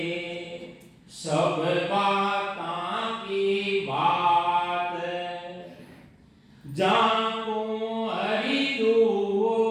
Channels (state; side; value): identical; both; correlation 1.00